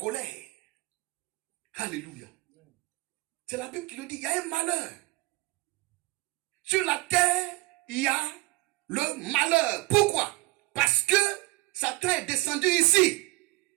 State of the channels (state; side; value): quieter; left; 21.8 dB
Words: Alléluia. C'est la Bible qui le dit, il y a un malheur. Sur la terre, il y a le malheur. Pourquoi? Parce que Satan est descendu ici.